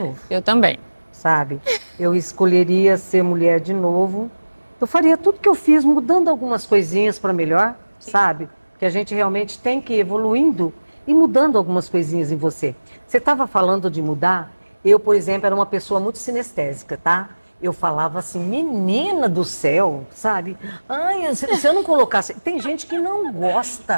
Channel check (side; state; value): both; inverted; correlation -1.00